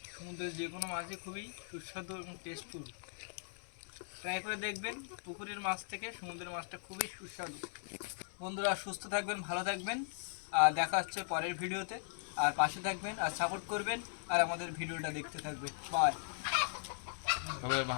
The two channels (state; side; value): silent; right; digital silence